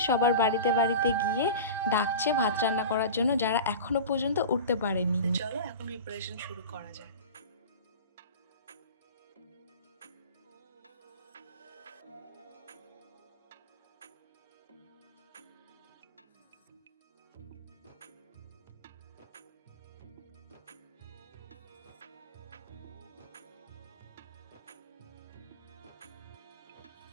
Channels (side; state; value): both; inverted; correlation -0.32